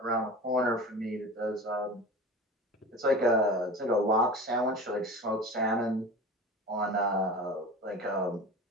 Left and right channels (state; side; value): normal; both; correlation 0.34